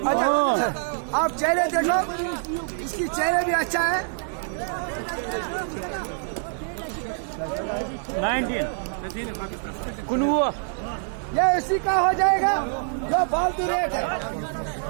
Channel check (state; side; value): silent; left; digital silence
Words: आप चेहरे देखो, इसकी चेहरे भी अच्छा है। 19 ये इसी का हो जाएगा जो फालतू रेट है।